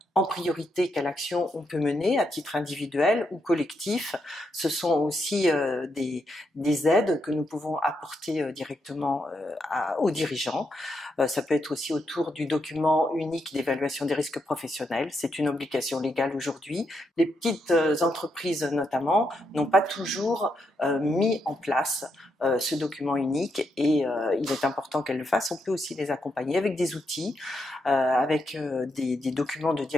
en priorité quelle action on peut mener à titre individuel ou collectif. Ce sont aussi des aides que nous pouvons apporter directement aux dirigeants. Ça peut être aussi autour du document unique d'évaluation des risques professionnels. C'est une obligation légale aujourd'hui. Les petites entreprises notamment n'ont pas toujours mis en place ce document unique, et il est important qu'elles le fassent. On peut aussi les accompagner avec des outils, avec des documents de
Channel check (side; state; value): both; normal; correlation 0.81